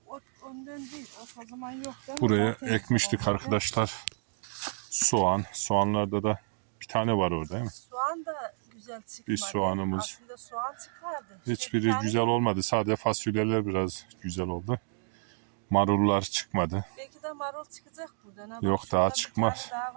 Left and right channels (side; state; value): left; silent; 58 dB below the other